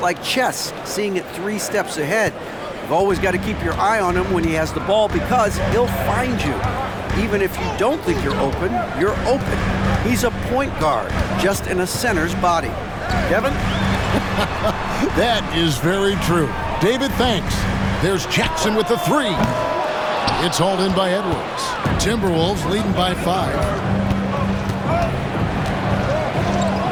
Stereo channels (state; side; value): identical; both; correlation 1.00